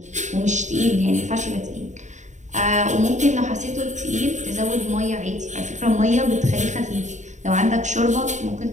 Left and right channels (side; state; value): left; late; 0.35 ms